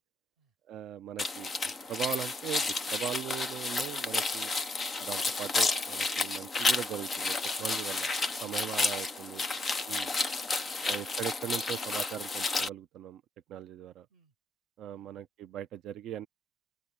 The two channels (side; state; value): both; normal; correlation 0.75